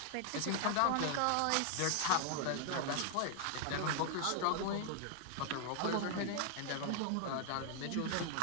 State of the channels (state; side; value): different; both; correlation 0.00